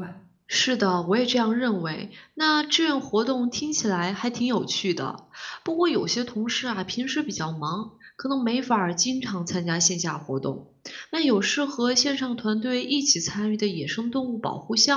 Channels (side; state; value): both; identical; correlation 1.00